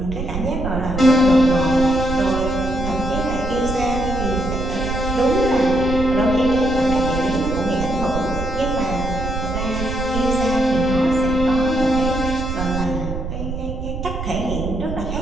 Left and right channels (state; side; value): noise; right; rumble, 5 dB below the sound